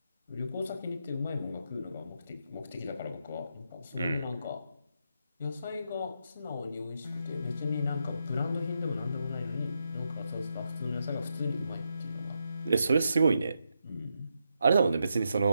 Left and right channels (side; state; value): both; inverted; correlation -0.83